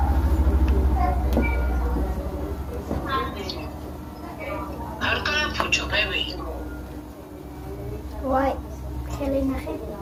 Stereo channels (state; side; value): identical; both; correlation 1.00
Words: არ გაიფუჭო, ბები. ვაი, ხელი ნახე.